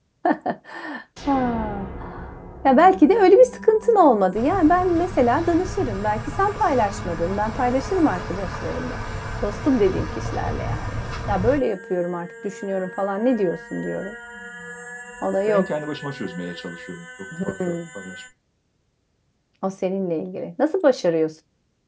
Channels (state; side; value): identical; both; correlation 1.00